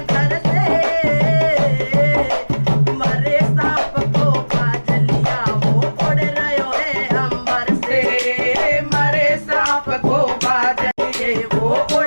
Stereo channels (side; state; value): both; inverted; correlation -1.00